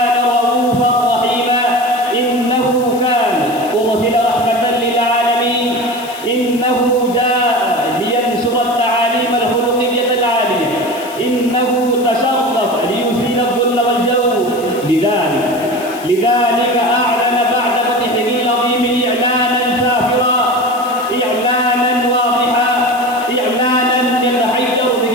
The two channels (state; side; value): noise; left; hiss, 18 dB below the sound